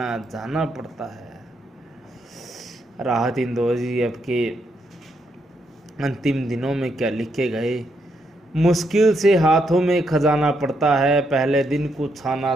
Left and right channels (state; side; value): normal; both; correlation 0.78